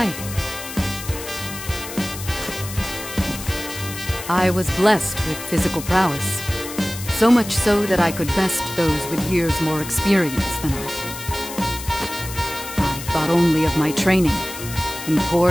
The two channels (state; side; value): noise; left; hiss, 10 dB below the sound